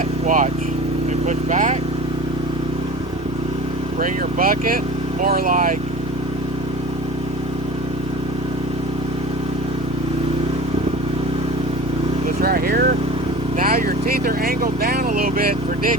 watch. And push back. Bring your bucket more like this right here. Now your teeth are angled down a little bit for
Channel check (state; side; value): normal; both; correlation 0.37